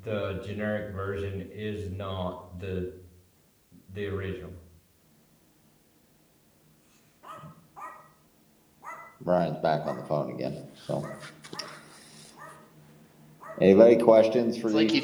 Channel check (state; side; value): identical; both; correlation 1.00